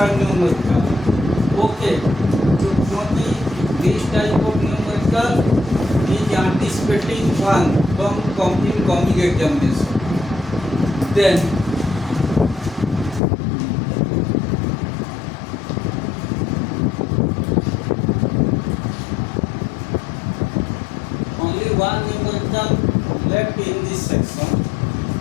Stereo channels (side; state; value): right; drops out; at 13.2 s